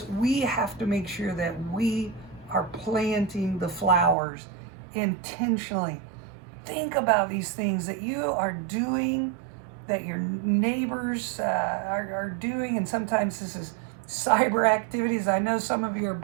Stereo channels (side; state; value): left; drops out; at 4.2 s